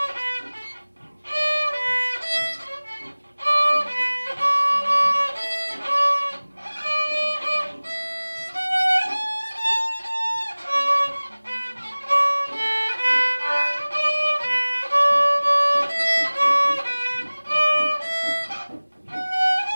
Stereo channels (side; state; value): both; inverted; correlation -1.00